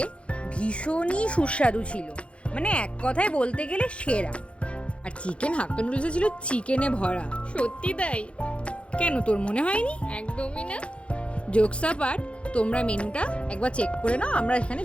ভীষণই সুস্বাদু ছিল, মানে এক কথায় বলতে গেলে সেরা। আর চিকেন হাক্কা নুডলসে ছিল চিকেনে ভরা। সত্যি তাই? কেন, তোর মনে হয়নি? একদমই না। জোকস অ্যাপার্ট, তোমরা মেনুটা একবার চেক করে নাও, আমরা এখানে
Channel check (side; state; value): right; late; 0.060 ms